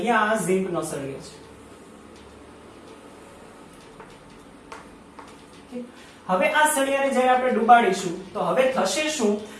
આ ઝિંકનો સળિયો છે। હવે આ સળિયાને જ્યારે આપણે ડુબાડીશું તો હવે થશે શું,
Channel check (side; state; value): both; identical; correlation 1.00